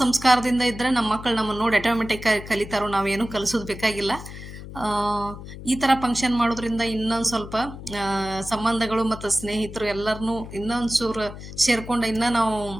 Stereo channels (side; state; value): left; noise; hum, 12 dB below the sound